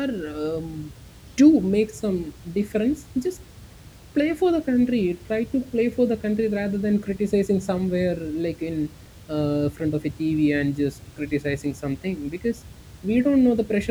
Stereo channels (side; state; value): both; identical; correlation 1.00